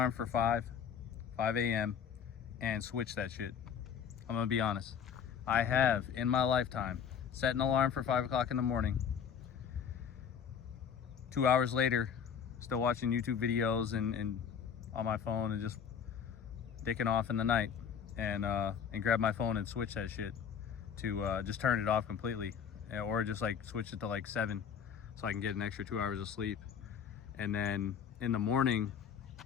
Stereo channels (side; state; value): right; quieter; 7.6 dB